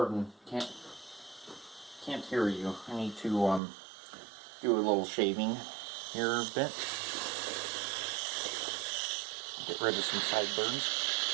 Can't hear you. I need to do a little shaving here a bit. Get rid of some sideburns.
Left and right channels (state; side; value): drops out; left; at 3.6 s